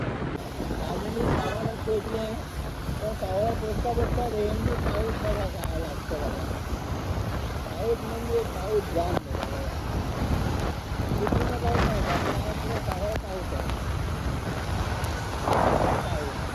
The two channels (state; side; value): identical; both; correlation 1.00